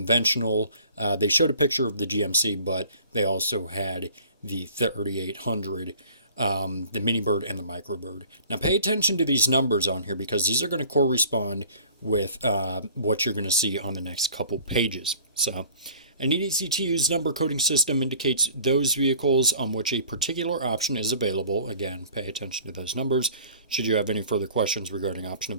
They showed a picture of the GMC, but they also had the 3800. The mini bird and the microbird. Now pay attention to these numbers on here because these are going to correspond with what you're going to see on the next couple pages. So an easy-to-use number coding system indicates those vehicles on which a particular option is available. Again, pay attention to those numbers. Should you have any further questions regarding option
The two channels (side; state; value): both; inverted; correlation -0.50